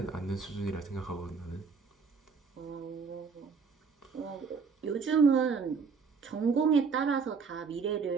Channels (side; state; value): left; quieter; 5.4 dB